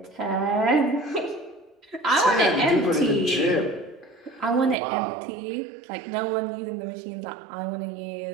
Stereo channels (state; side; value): drops out; left; at 4.8 s